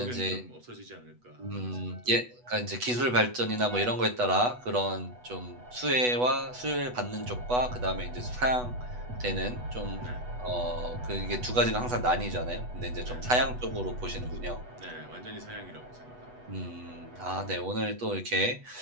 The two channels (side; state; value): left; late; 8.1 ms